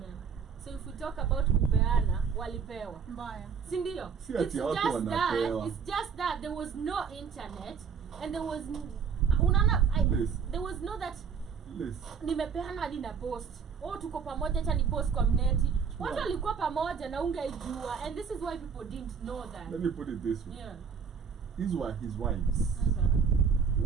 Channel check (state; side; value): quieter; left; 6.4 dB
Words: So if we talk about kupeana, walipewa. Mbaya. Si ndio? Si ati watu wanapewa. It's just that there was no internet and there was unaona Yes. there was no that Yes. nimepeana hadi na post. Oh, tuko pamoja, acha ni post kwa mneti. Watu Wow. walikuwa pamoja na ungeijua, and this is why people didn't know that. Let me put it this way. Yeah. These were his wives.